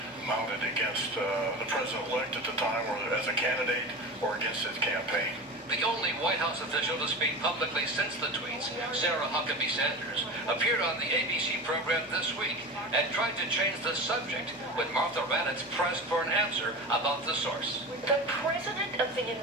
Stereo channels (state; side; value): normal; both; correlation 0.29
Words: mounted against the president-elect at the time or as a candidate or against his campaign. The only White House official to speak publicly since the tweets, Sarah Huckabee Sanders, appeared on the ABC program this week and tried to change the subject when Martha Raddatz pressed for an answer about the source. The President of the